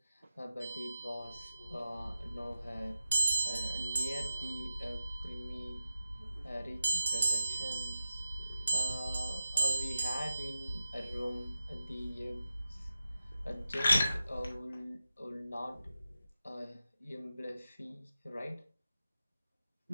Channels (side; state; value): both; inverted; correlation -0.94